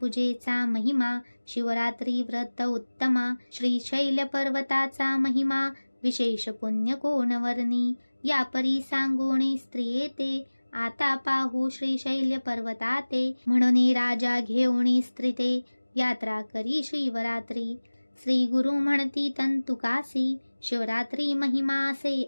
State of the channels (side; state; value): both; inverted; correlation -1.00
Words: महिमा, शिवरात्री व्रत उत्तमा. श्रीशैल पर्वताचा महिमा, विशेष पुण्य कोण वर्णी. या परी सांगोणी स्त्रिये ते, आता पाहू श्रीशैल्य पर्वताते. म्हणून राजा घेऊणी स्त्रिते, यात्रा करी शिवरात्री. श्री गुरु म्हणती तंतुकासी, शिवरात्री महिमा से